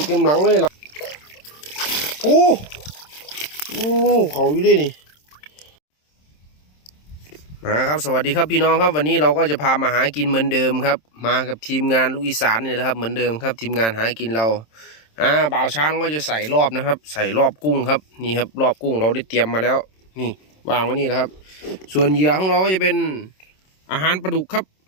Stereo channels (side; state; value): right; late; 27 ms